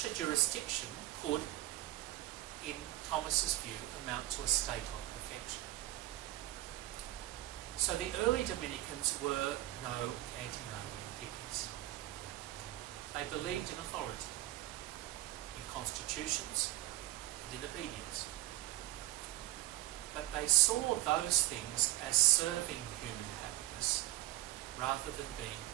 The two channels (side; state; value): left; quieter; 16.7 dB